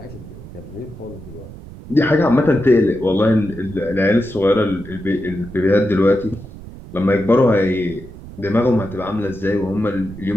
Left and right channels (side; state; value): right; noise; rumble, 15 dB below the sound